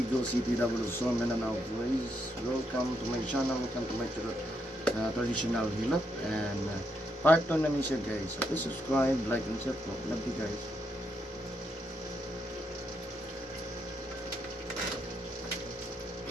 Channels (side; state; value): both; normal; correlation 0.78